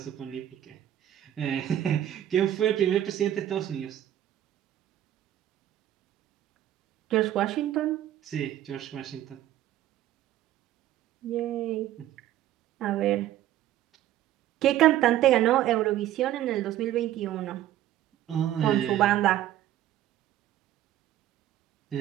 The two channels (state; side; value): quieter; left; 12.5 dB